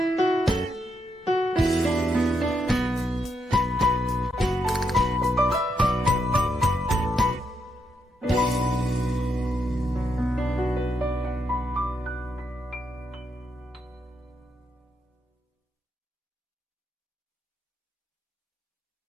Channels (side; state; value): both; normal; correlation 0.81